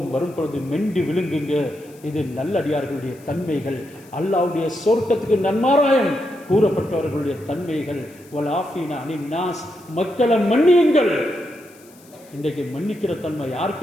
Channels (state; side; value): noise; left; hiss, 26 dB below the sound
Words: வரும் பொழுது மெண்டி விழுங்குங்க. இது நல்லடியார்களுடைய தன்மைகள், அல்லாஹ்வுடைய சொர்க்கத்துக்கு நன்மாராயம் கூறப்பட்டவர்களுடைய தன்மைகள். வலாஃபீனா அனின் நாஸ், மக்களை மன்னியுங்கள். இன்றைக்கு மன்னிக்கிற தன்மை